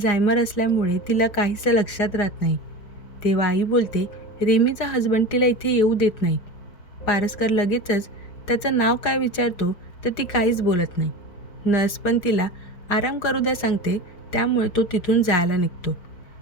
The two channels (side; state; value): right; late; 4.9 ms